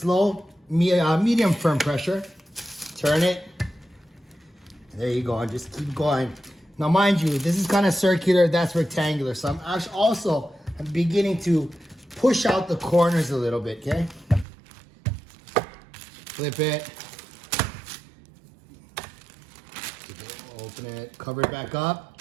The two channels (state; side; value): drops out; left; at 14.5 s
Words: medium firm pressure, turn it, and there you go, and just keep going. Now mind you, this is kind of circular, that's rectangular, so I'm actually also beginning to push out the corners a little bit, okay? Flip it, open it, cover it back up,